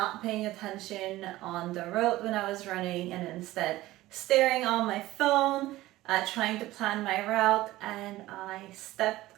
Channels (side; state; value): left; quieter; 17.0 dB